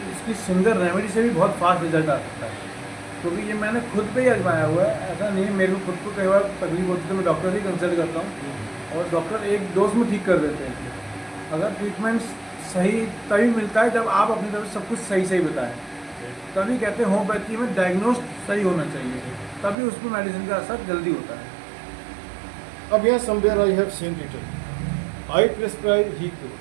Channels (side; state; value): left; drops out; at 19.8 s